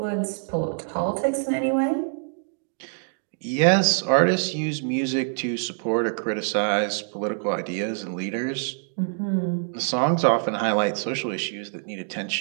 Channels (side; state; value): left; silent; digital silence